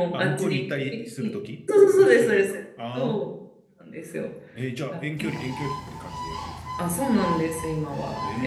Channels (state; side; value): identical; both; correlation 1.00